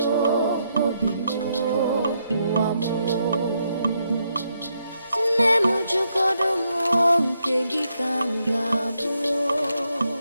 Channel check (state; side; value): inverted; both; correlation -0.79